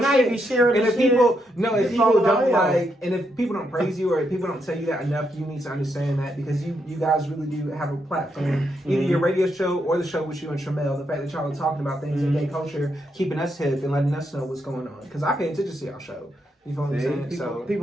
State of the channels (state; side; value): normal; both; correlation 0.80